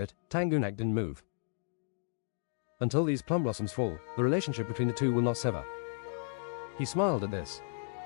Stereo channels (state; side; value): silent; right; digital silence